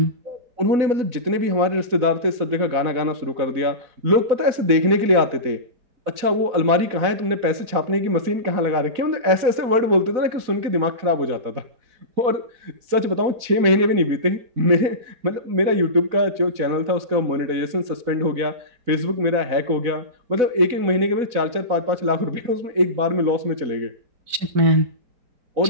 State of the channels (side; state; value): left; late; 4.1 ms